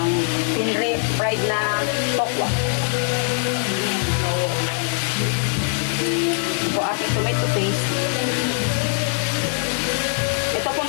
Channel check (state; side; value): silent; right; 62 dB below the other